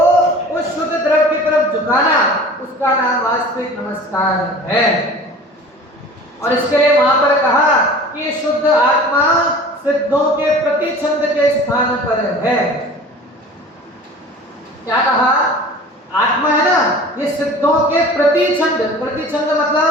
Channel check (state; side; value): normal; both; correlation 0.41